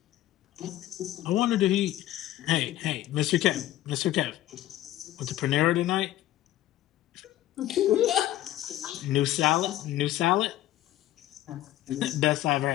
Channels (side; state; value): right; quieter; 14.3 dB